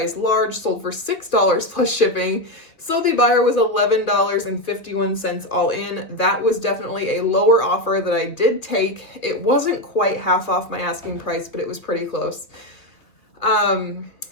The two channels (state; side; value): late; right; 2.6 ms